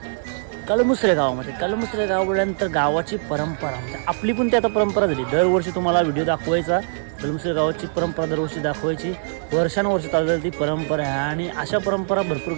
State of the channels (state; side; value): silent; left; digital silence